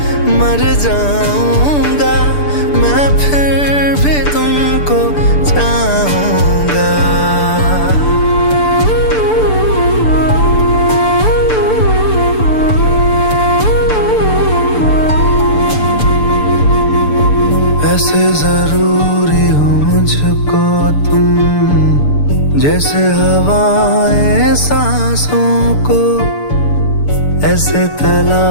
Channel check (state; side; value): late; right; 6.8 ms